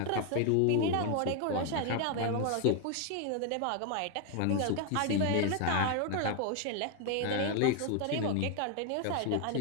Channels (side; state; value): both; different; correlation 0.01